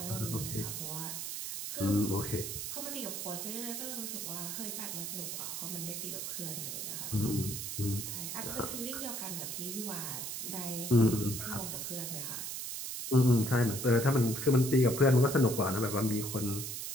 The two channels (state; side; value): noise; right; hiss, 5 dB below the sound